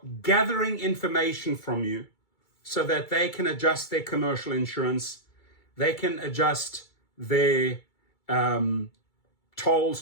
gathering information from you so that they can adjust their commercial insurance. They can adjust their tolls,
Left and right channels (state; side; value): late; right; 2.3 ms